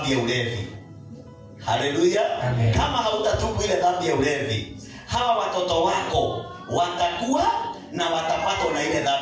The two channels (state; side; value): identical; both; correlation 1.00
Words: ya ulevi. Haleluya. Kama hautatubu ile dhambi ya ulevi, hawa watoto wako watakuwa na watapatwa na ile